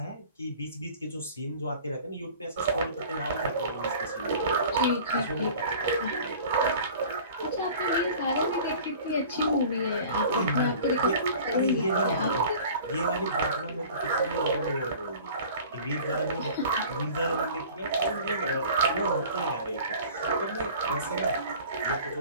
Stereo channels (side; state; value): both; inverted; correlation -0.44